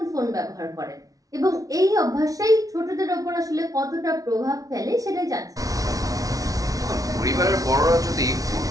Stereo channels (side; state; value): left; late; 0.18 ms